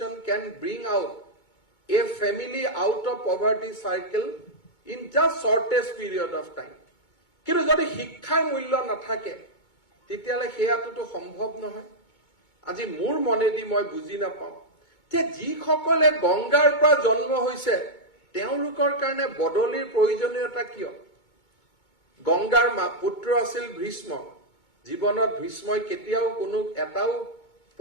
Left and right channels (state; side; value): late; right; 2.2 ms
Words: can bring out a family out of poverty circle in just shortest period of time. কিন্তু যদি শিক্ষাৰ মূল্য নাথাকে তেতিয়াহ'লে সেয়াটোতো সম্ভৱ নহয়। আজি মোৰ মনেদি মই বুজি নাপাওঁ যে যিসকলে গংগাৰ পৰা জন্ম হৈছে তেওঁলোকৰ কাৰণে বদলিৰ প্ৰয়োজনীয়তা কিয়। গংগাৰ পুত্ৰ আছিল ভীষ্ম, জীৱনত ভীষ্মই কেতিয়াও কোনো এটাও